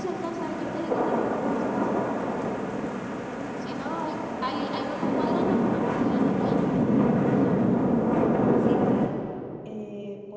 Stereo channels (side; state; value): both; identical; correlation 1.00